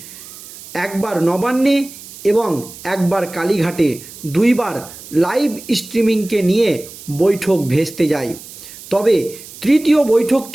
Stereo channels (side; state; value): right; noise; hiss, 16 dB below the sound